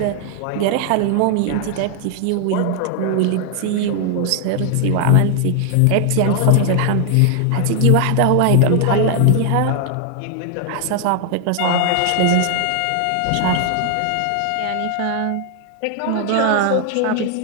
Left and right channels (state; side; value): different; both; correlation 0.00